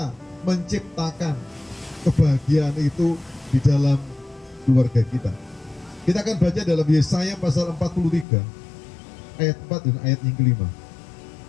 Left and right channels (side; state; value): right; drops out; at 8.2 s